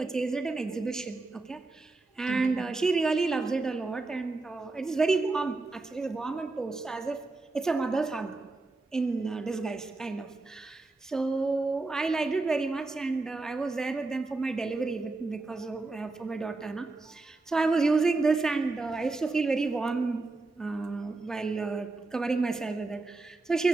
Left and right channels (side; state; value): left; quieter; 3.4 dB